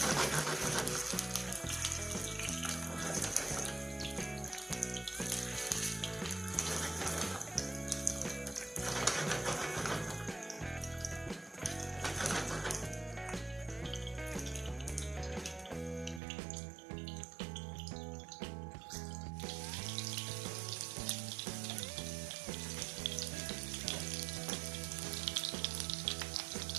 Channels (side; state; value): left; drops out; at 16.2 s